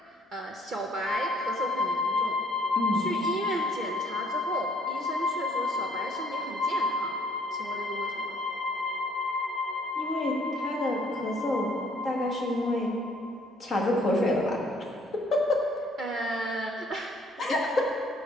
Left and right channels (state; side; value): normal; both; correlation 0.62